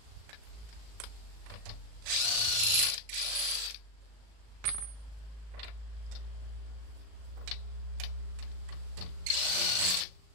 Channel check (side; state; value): left; late; 37 ms